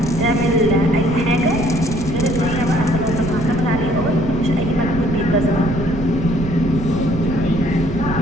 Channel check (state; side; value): noise; right; rumble, 7 dB below the sound